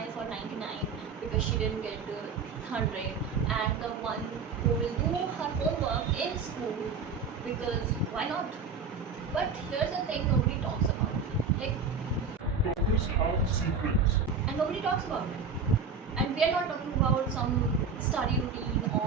for 99 because she didn't get the 100, and the one who will do her homework in school because why not? But here's the thing nobody talks about. Like, Toppers have secrets. and nobody talks about it. And we are not talking about some study routine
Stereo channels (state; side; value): quieter; left; 5.1 dB